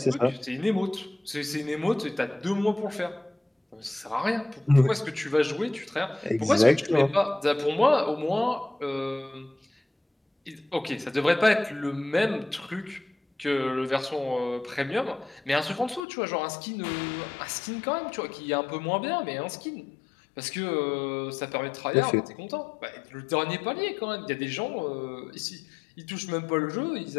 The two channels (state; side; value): drops out; right; at 16.0 s